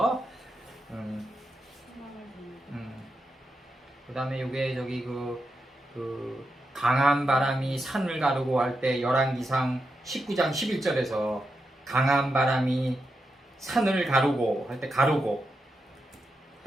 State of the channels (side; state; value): both; normal; correlation 0.86